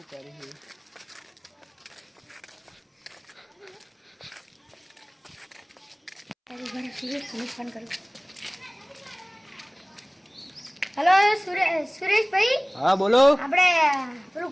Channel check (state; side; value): identical; both; correlation 1.00